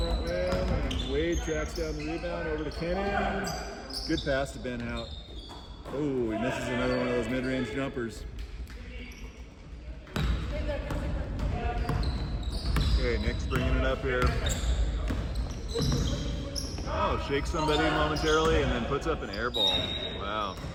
rim, and Wade tracks down the rebound over to Kennan. Good pass to Ben Hout. Oh, he misses another one of those mid-range jumpers. Okay, Nick's bringing it up here. Oh, shakes somebody momentarily and then puts up an air ball. Wow.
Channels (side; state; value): both; identical; correlation 1.00